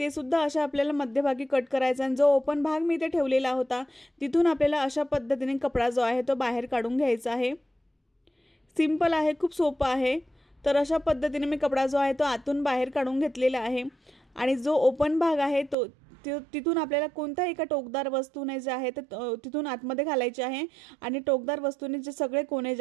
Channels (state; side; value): drops out; left; at 15.8 s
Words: सुद्धा अशा आपल्याला मध्यभागी कट करायचा आणि जो ओपन भाग मी इथे ठेवलेला होता तिथून आपल्याला अशा पद्धतीने कपडा जो आहे तो बाहेर काढून घ्यायचा आहे। सिंपल आहे, खूप सोपं आहे। तर अशा पद्धतीने मी कपडा जो आहे तो आतून बाहेर काढून घेतलेला आहे आणि जो ओपन भाग आहे तो तिथून आपल्याला कोणत्याही एका टोकदार वस्तूने जे आहे ते तिथून आतमध्ये घालायचे आहे आणि टोकदार वस्तूने जे सगळे कोने